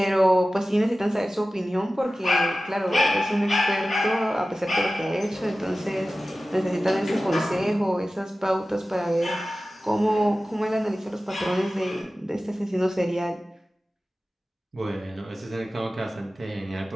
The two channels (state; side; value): normal; both; correlation 0.95